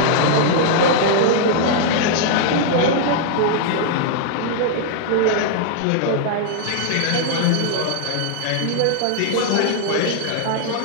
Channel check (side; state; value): both; different; correlation -0.01